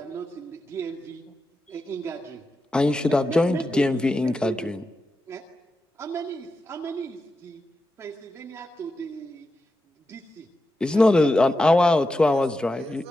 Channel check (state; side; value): normal; both; correlation 0.89